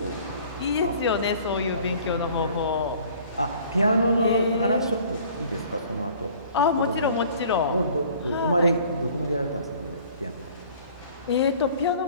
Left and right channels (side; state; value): both; inverted; correlation -0.52